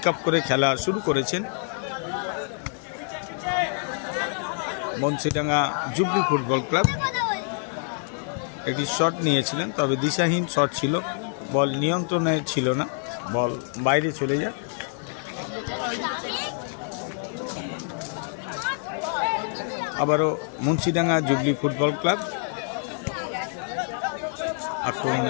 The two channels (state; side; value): silent; right; 61 dB below the other